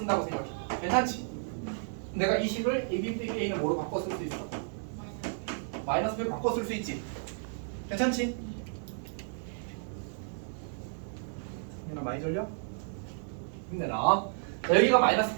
생각해. 괜찮지? 내가 이 식을 AB 빼기 A는 뭐로 바꿔 쓸 수 있어? 마이너스 B로 바꿔 쓸 수 있지? 괜찮지? 많이 졸려? 힘내라. 자, 여기가 마이너스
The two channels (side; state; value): left; silent; 56 dB below the other